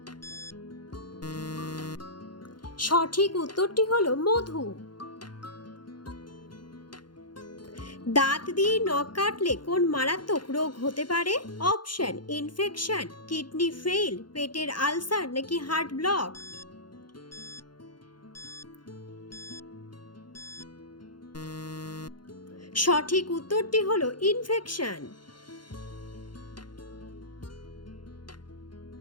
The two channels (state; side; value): late; right; 0.71 ms